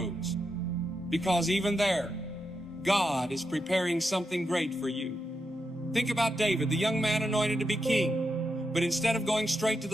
Because even there, God is preparing something great for you. Think about David, the young man anointed to be king. But instead of going straight to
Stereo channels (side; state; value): both; normal; correlation 0.85